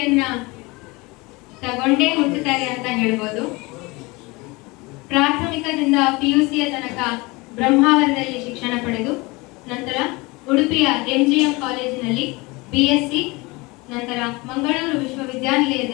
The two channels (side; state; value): right; quieter; 24.4 dB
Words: ತಗೊಂಡೇ ಹುಟ್ಟುತ್ತಾರೆ ಅಂತ ಹೇಳ್ಬೋದು. ಪ್ರಾಥಮಿಕದಿಂದ PUCಯ ತನಕ ಬ್ರಹ್ಮಾವರದಲ್ಲಿ ಶಿಕ್ಷಣ ಪಡೆದು ನಂತರ ಉಡುಪಿಯ MGM ಕಾಲೇಜಿನಲ್ಲಿ BSc, ನಂತರ ಮಂಗಳೂರು